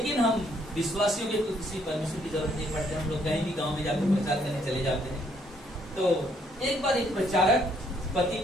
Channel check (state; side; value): normal; both; correlation 0.68